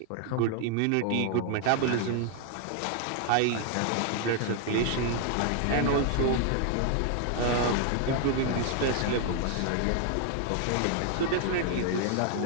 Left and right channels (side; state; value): both; different; correlation 0.00